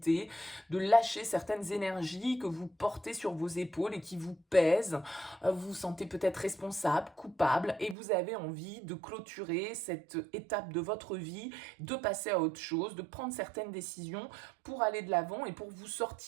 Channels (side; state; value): left; drops out; at 8.0 s